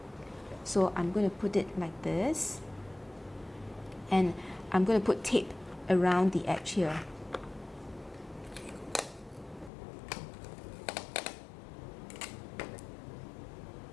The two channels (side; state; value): right; drops out; at 9.7 s